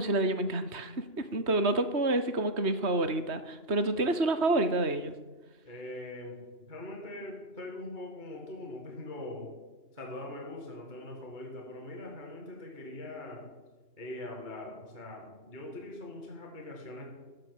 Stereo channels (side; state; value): left; late; 2.9 ms